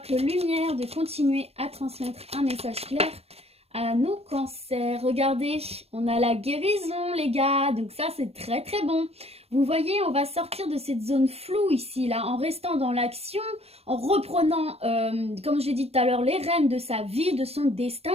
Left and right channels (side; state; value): left; late; 0.29 ms